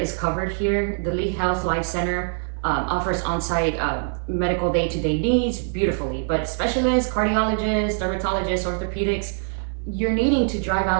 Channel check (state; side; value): silent; left; digital silence